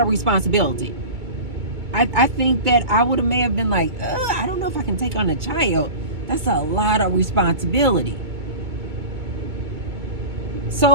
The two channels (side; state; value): left; late; 2.2 ms